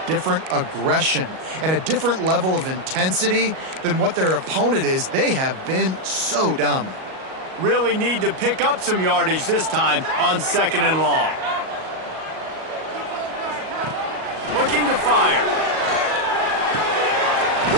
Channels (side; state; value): left; late; 38 ms